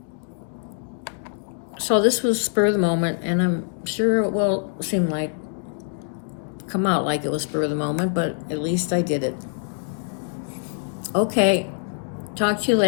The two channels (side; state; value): right; silent; digital silence